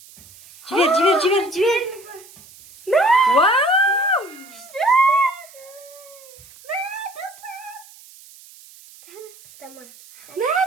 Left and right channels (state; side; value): noise; right; hiss, 22 dB below the sound